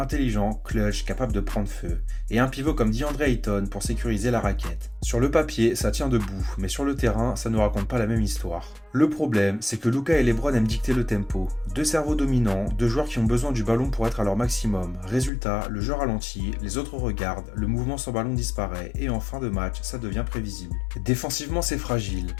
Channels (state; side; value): drops out; right; at 15.3 s